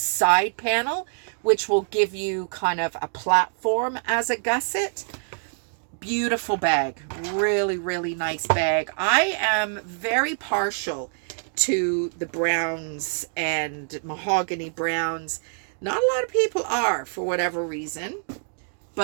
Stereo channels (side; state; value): left; silent; digital silence